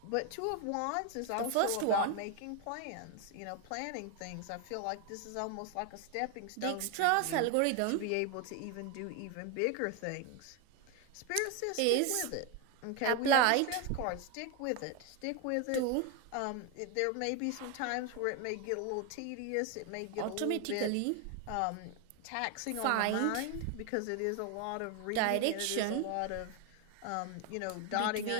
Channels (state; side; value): different; both; correlation 0.01